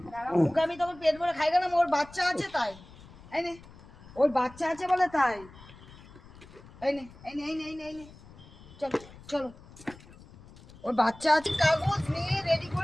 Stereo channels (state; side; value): noise; left; rumble, 21 dB below the sound